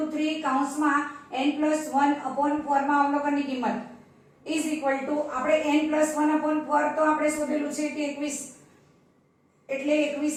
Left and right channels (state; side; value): identical; both; correlation 1.00